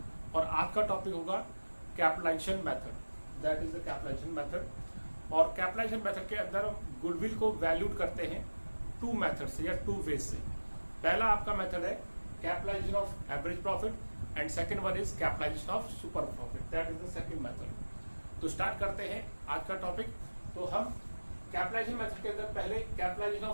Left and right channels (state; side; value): inverted; both; correlation -1.00